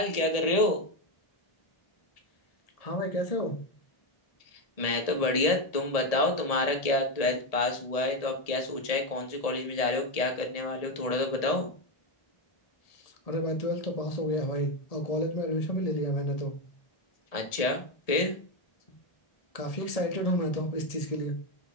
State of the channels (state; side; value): late; right; 1.7 ms